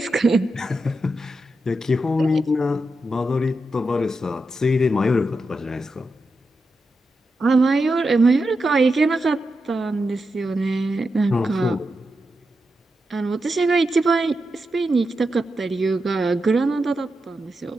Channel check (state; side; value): normal; both; correlation 0.88